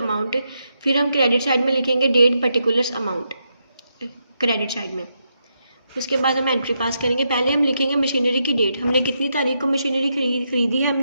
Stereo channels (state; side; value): inverted; both; correlation -0.82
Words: फिर हम क्रेडिट साइड में लिखेंगे date particulars amount credit side में। उसके बाद हम एंट्री पास करेंगे। पहले हम लिखेंगे मशीनरी की डेट, हमने कितनी तारीख को मशीनरी खरीदी है,